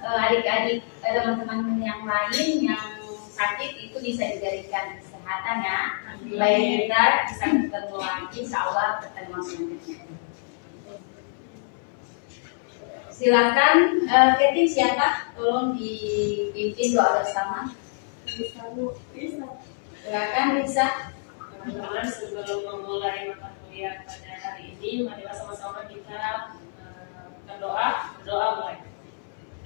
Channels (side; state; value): right; silent; 61 dB below the other